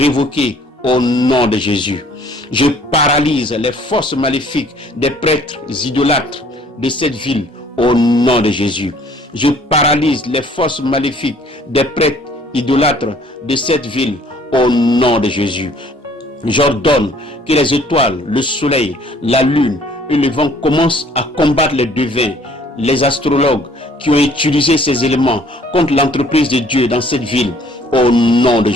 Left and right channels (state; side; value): normal; both; correlation 0.57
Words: au nom de Jésus. Je paralyse les forces maléfiques des prêtres idolâtres de cette ville au nom de Jésus. Je paralyse les forces maléfiques des prêtres idolâtres de cette ville au nom de Jésus. J'ordonne que les étoiles, le soleil, la lune et le vent commencent à combattre les devins, les astrologues qui ont utilisé ces éléments contre l'entreprise de Dieu dans cette ville au nom de